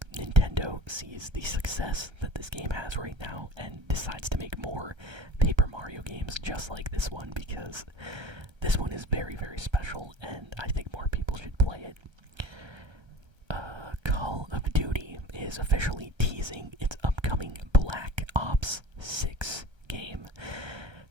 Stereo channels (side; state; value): left; late; 1.3 ms